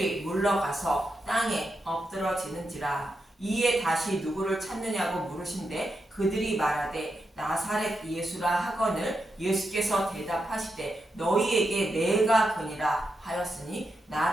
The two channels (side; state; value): both; normal; correlation 0.86